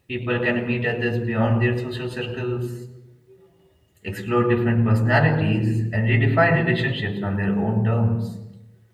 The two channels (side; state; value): both; identical; correlation 1.00